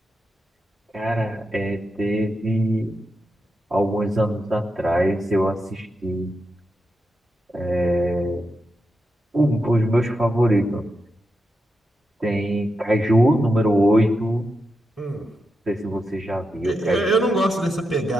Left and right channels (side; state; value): both; normal; correlation 0.87